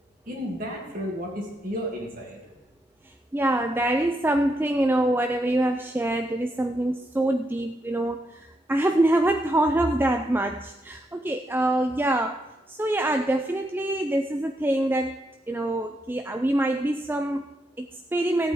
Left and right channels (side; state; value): both; normal; correlation 0.81